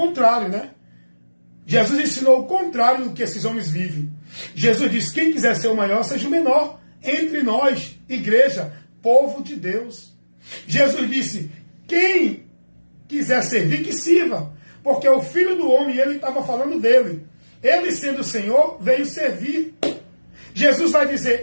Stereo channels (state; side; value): inverted; both; correlation -1.00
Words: né? Jesus ensinou o contrário do que esses homens vivem. Jesus disse: quem quiser ser o maior, seja o menor entre nós, igreja, povo de Deus. Jesus disse: quem quiser servir, que sirva. Porque o Filho do Homem, ele estava falando dele. Ele, sendo o Senhor, veio servir. Jesus vai